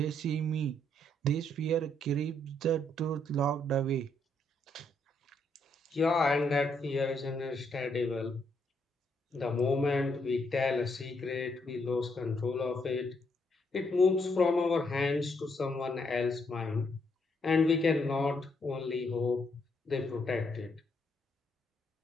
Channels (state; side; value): normal; both; correlation 0.74